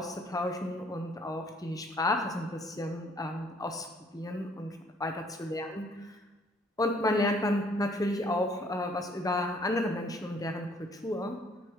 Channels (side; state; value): both; normal; correlation 0.61